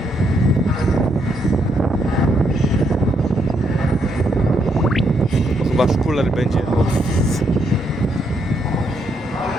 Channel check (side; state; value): both; normal; correlation 0.76